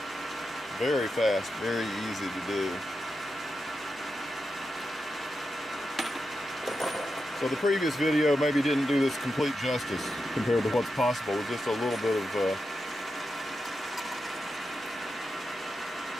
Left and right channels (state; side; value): normal; both; correlation 0.88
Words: Very fast, very easy to do. So the previous video maybe didn't do this complete justice compared to what's possible with just a little bit of